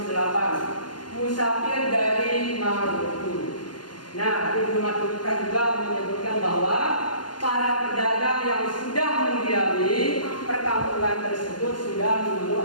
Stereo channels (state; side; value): late; right; 0.71 ms